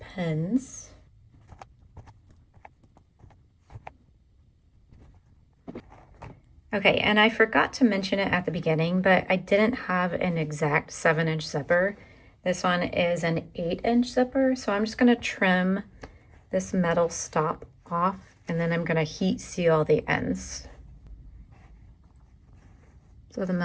pins. Okay, and I forgot to mention it at the beginning, but I didn't have an exact 7-inch zipper. This one is an 8-inch zipper, so I'm just going to trim this metal stop off, and then I'm going to heat seal the ends. So the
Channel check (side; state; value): both; identical; correlation 1.00